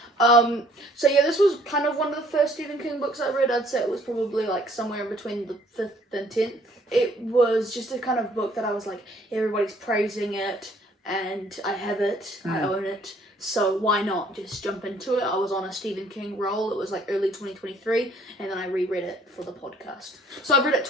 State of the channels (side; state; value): both; normal; correlation 0.60